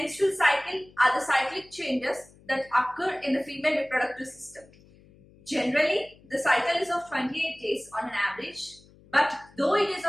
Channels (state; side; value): noise; left; hum, 26 dB below the sound